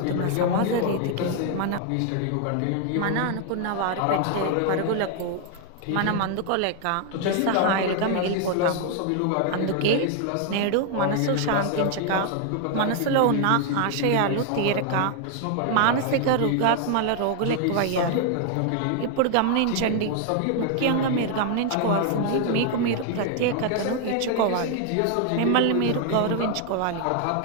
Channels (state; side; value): different; both; correlation 0.00